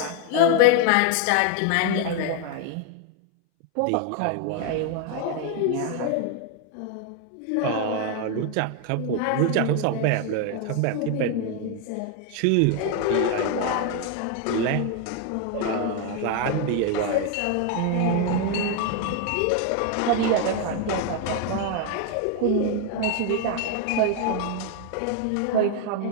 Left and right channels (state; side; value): different; both; correlation 0.01